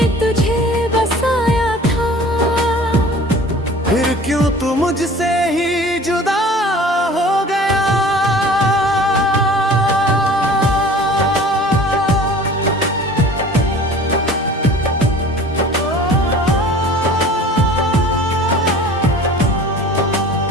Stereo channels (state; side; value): normal; both; correlation 0.44